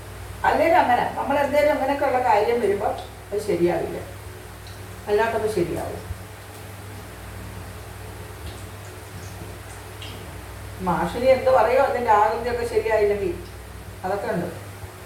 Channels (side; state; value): both; identical; correlation 1.00